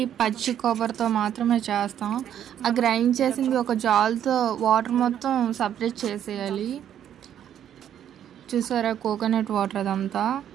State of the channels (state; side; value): quieter; left; 10.1 dB